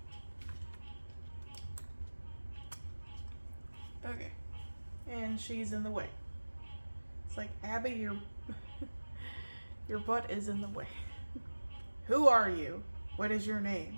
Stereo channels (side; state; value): both; inverted; correlation -1.00